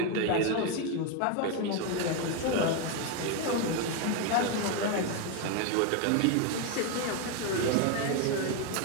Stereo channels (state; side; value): different; both; correlation 0.02